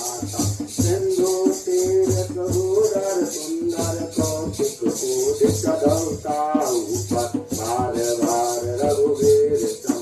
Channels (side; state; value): both; identical; correlation 1.00